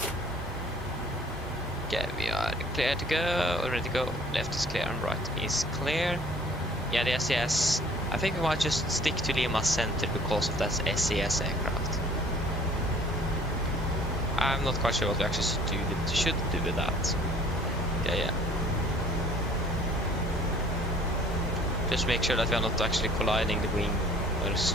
Okay, we are clear to go, ready to go. Left is clear and right is clear. Yeah, the SES. I think we might just stick to Lima Center because of that SES aircraft. I'm not quite sure what we actually should do with that. Yeah. Just make sure that we are not actually colliding the wing or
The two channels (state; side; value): normal; both; correlation 0.53